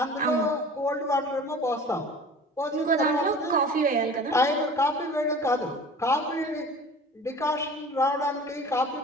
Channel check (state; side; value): normal; both; correlation 0.42